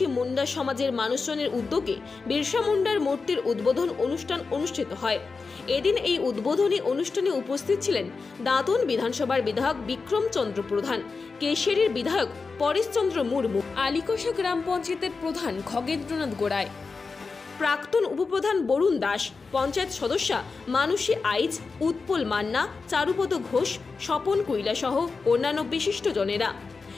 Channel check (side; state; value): right; quieter; 4.5 dB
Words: মুন্ডা সমাজের মানুষজনের উদ্যোগে বিরসা মুন্ডার মূর্তির উদ্বোধন অনুষ্ঠান অনুষ্ঠিত হয়। এদিন এই উদ্বোধনী অনুষ্ঠানে উপস্থিত ছিলেন দাঁতন বিধানসভার বিধায়ক বিক্রম চন্দ্র প্রধান, কেশিয়ারির বিধায়ক পরেশচন্দ্র মুর্মু, আলিকোষা গ্রাম পঞ্চায়েতের প্রধান খগেন্দ্রনাথ গোড়ায়, প্রাক্তন উপপ্রধান বরুণ দাস, পঞ্চায়েত সদস্যা মানসী আইচ, উৎপল মান্না, চারুপদ ঘোষ, স্বপন কুইলা সহ অন্যান্য বিশিষ্ট জনেরা।